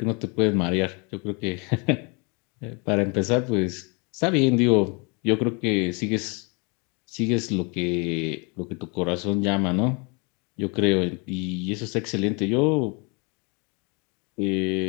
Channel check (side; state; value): right; quieter; 32.1 dB